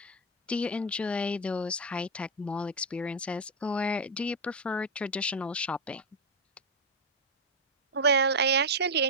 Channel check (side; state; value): both; normal; correlation 0.04